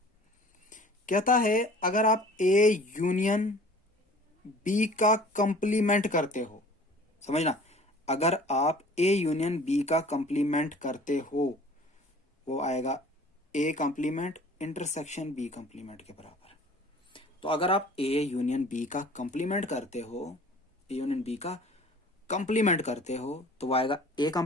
कहता है, अगर आप ए यूनियन बी का कंप्लीमेंट करते हो, समझना, अगर आप ए यूनियन बी का कंप्लीमेंट करते हो, वो आएगा A complement intersection B complement के बराबर। तो अगर आप ए यूनियन बी का कंप्लीमेंट करते हो, ए यूनियन बी का कंप्लीमेंट करते हो, तो वो आएगा A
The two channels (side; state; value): both; normal; correlation 0.48